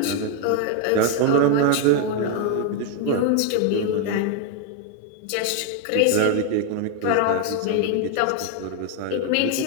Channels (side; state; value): both; different; correlation 0.01